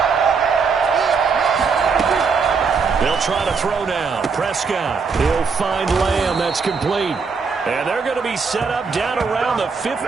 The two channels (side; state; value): left; quieter; 5.2 dB